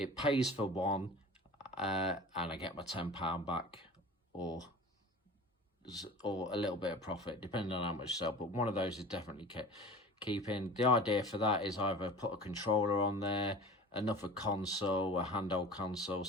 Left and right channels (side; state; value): both; normal; correlation 0.38